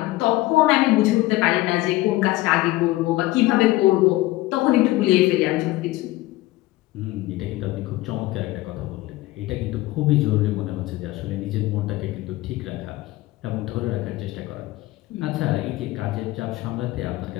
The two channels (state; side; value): quieter; right; 18.2 dB